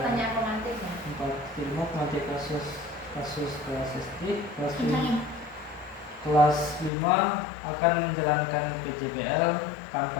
pemantik ya. 45 pemati kasus kelas SD, Kencangin. kelas 5 akan menjalankan PJBL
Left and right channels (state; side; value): drops out; right; at 6.9 s